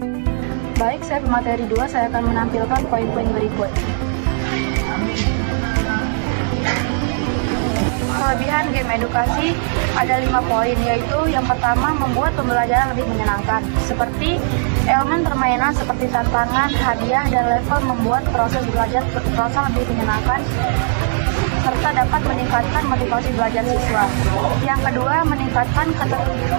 Baik, saya pemateri 2, saya akan menampilkan poin-poin berikut. Kelebihan game edukasi ada 5 poin, yaitu yang pertama, membuat pembelajaran lebih menyenangkan. Seperti elemen permainan seperti tantangan, hadiah, dan level membuat proses belajar terasa lebih menyenangkan serta dapat meningkatkan motivasi belajar siswa. Yang kedua, meningkatkan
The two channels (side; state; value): left; silent; digital silence